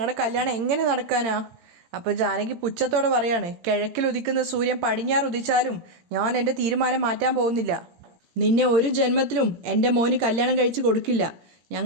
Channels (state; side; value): late; left; 18 ms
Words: കല്യാണം എങ്ങനെ നടക്കാനാ? അപ്പോൾ ജാനകി പുച്ഛത്തോടെ പറയാണ്, കിഴക്കിൽ ഉദിക്കുന്ന സൂര്യൻ പടിഞ്ഞാറ് ഉദിച്ചാലും ഞാൻ എൻ്റെ തീരുമാനം മാറ്റാൻ പോകുന്നില്ല. നിന്നെ ഒരു ജന്മത്തിലും എൻ്റെ മോന് കല്യാണം കഴിച്ച് കൊടുക്കില്ല.